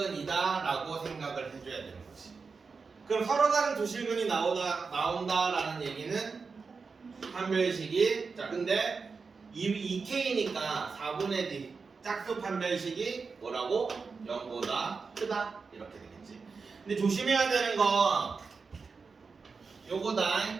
라고 생각을 해줘야 되는 거지. 그럼 서로 다른 두 실근이 나온다라는 얘기는 판별식이, 자 근데 2k니까 4분의 d 짝수 판별식이 뭐라고? 0보다 크다 이렇게 되겠지. 근데 조심해야 되는 건 요거다.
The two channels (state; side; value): quieter; left; 4.8 dB